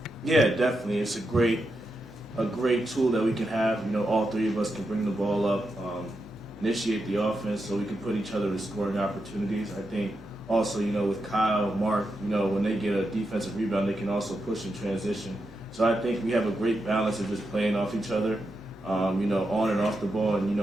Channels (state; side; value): normal; both; correlation 0.86